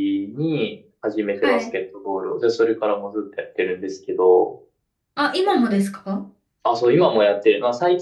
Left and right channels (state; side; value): identical; both; correlation 1.00